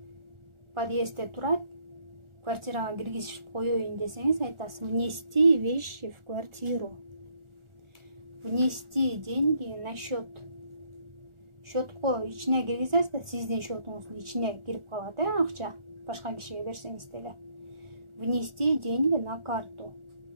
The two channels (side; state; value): left; late; 1.4 ms